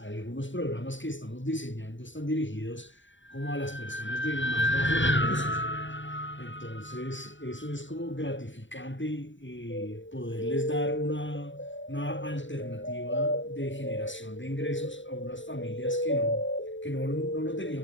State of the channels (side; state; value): right; late; 0.55 ms